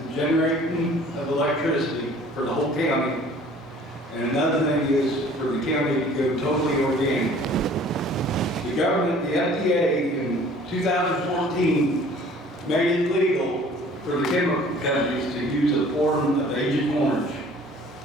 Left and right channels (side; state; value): both; normal; correlation 0.51